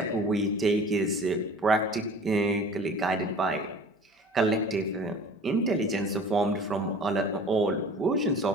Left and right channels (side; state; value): both; normal; correlation 0.44